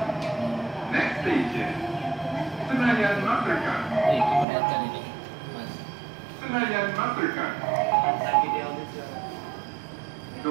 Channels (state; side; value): drops out; left; at 4.5 s